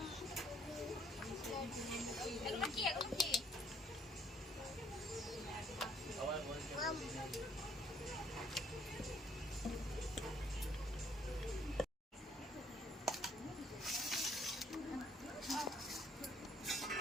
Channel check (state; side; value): normal; both; correlation 0.64